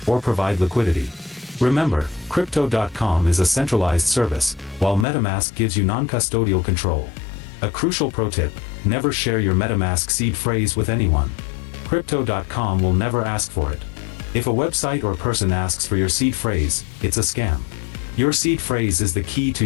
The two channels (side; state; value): right; drops out; at 5.1 s